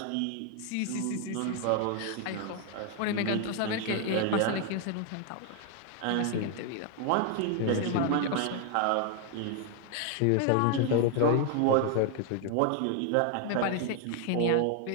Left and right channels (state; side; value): different; both; correlation 0.00